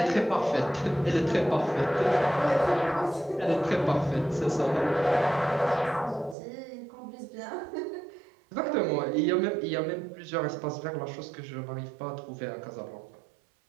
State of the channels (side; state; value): left; drops out; at 6.4 s